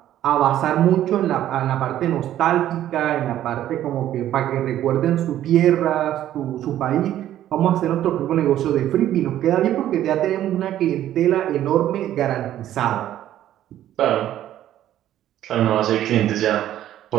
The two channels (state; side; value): quieter; left; 12.3 dB